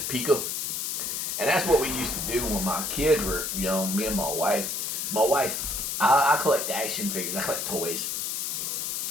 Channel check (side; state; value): left; noise; hiss, 2 dB below the sound